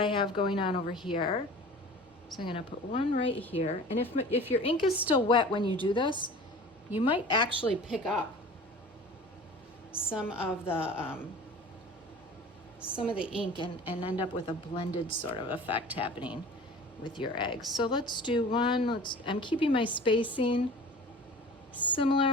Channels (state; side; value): normal; both; correlation 0.41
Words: have going on over here. So I'm gonna put one right here, and if your ink is still wet when you do this, you might actually pick up some of the ink and end up with a blended sort of effect happening with your eggs. So let's do one. I'm keeping my spacing